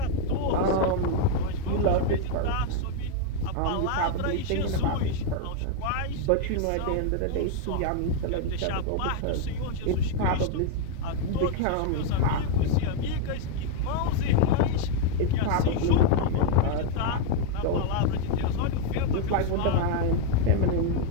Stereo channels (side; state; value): both; different; correlation 0.00